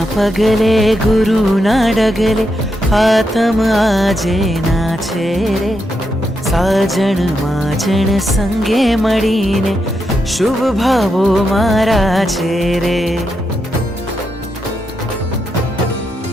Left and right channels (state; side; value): normal; both; correlation 0.84